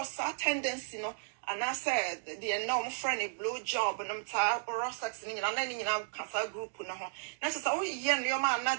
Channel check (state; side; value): silent; left; digital silence